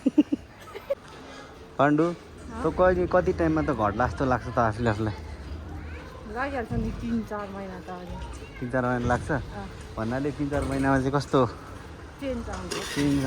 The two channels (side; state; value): both; identical; correlation 1.00